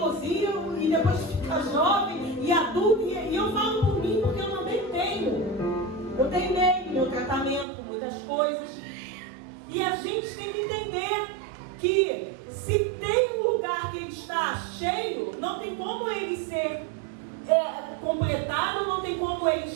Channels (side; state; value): left; drops out; at 7.7 s